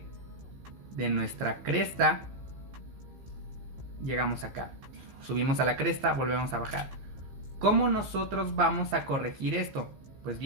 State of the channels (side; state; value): left; late; 15 ms